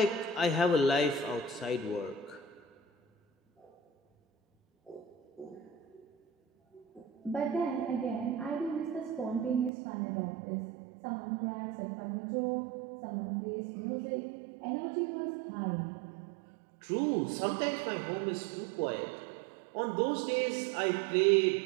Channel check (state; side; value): drops out; left; at 9.7 s